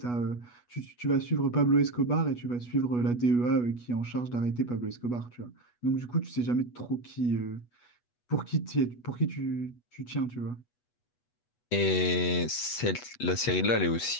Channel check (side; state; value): right; late; 8.2 ms